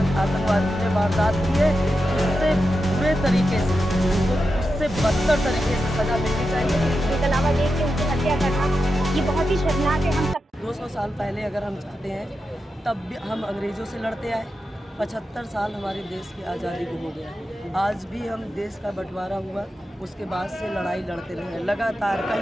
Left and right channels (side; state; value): both; normal; correlation 0.89